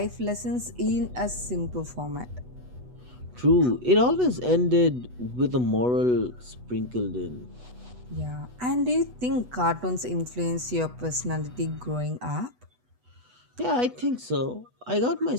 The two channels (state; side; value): late; left; 8.1 ms